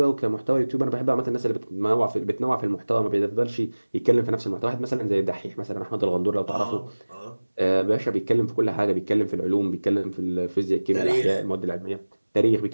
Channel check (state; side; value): inverted; both; correlation -1.00